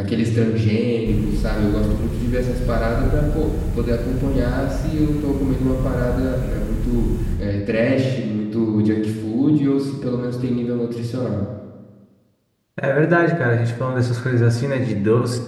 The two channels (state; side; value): identical; both; correlation 1.00